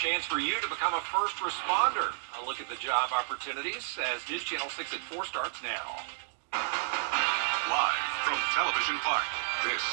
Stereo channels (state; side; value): silent; left; digital silence